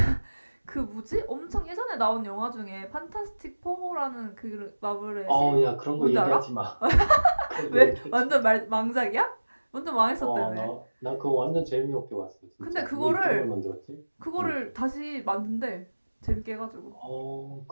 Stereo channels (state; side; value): inverted; both; correlation -1.00